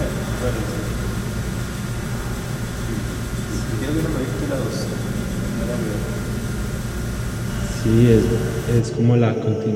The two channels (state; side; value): identical; both; correlation 1.00